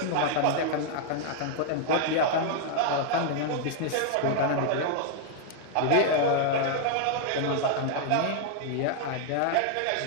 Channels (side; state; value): both; different; correlation 0.00